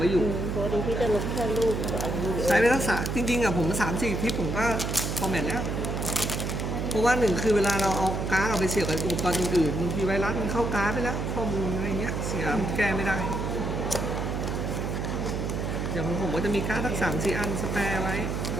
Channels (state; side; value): noise; right; hum, 2 dB below the sound